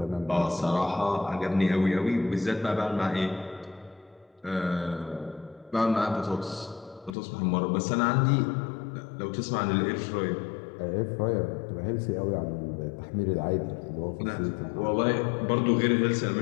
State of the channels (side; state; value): right; drops out; at 7.1 s